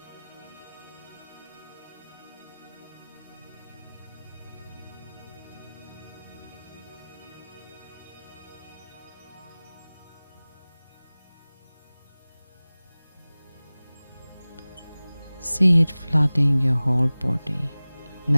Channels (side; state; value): both; inverted; correlation -0.99